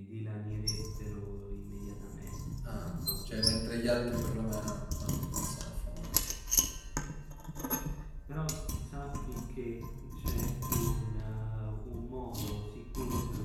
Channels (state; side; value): identical; both; correlation 1.00